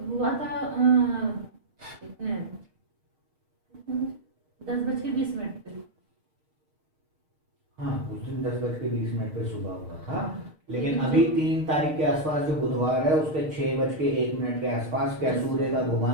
हुआ था कितने 10:20 पे। हाँ, उस दिन 10:20 पे सुबह हुआ था, लेकिन अभी 3 तारीख के आसपास जो बुधवार है उसके 6:01 के आसपास क्या सूर्य का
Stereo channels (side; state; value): left; late; 6.5 ms